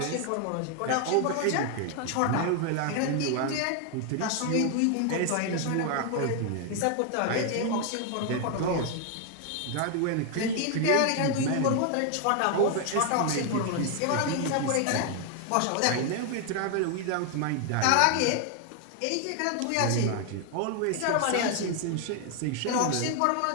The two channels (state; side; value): different; both; correlation 0.00